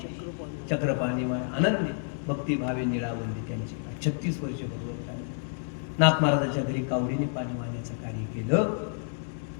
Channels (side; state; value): right; silent; 58 dB below the other